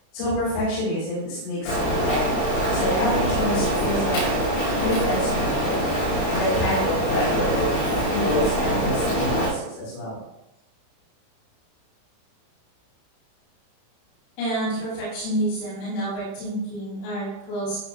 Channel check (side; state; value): right; late; 36 ms